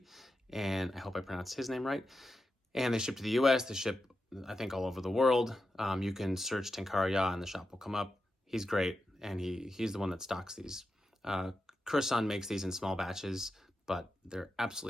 and I hope I pronounced his name right. And they ship to the US, they ship, I think, all over the world. You can search Tenkara Ya and the shop will come up. He's great, and he's the one that stocks these. Kurasan makes these in small batches, but they're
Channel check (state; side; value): normal; both; correlation 0.89